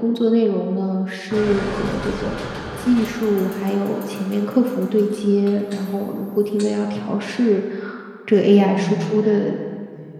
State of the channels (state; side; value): identical; both; correlation 1.00